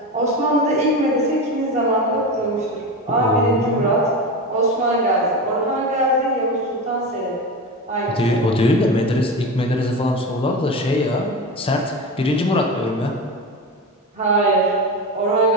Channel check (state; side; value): normal; both; correlation 0.23